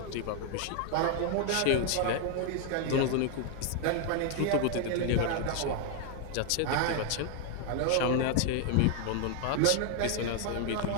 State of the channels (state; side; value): different; both; correlation 0.00